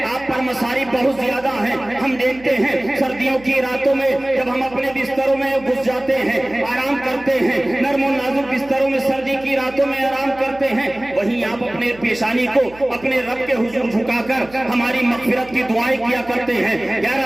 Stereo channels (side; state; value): right; noise; hum, 22 dB below the sound